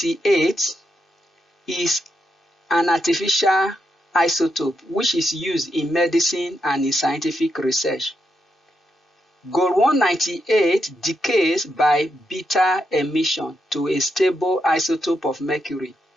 is an artificial isotope which is used in medicine and in scientific research. Gold 198 decays by beta emission to a stable isotope of mercury.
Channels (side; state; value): both; normal; correlation 0.83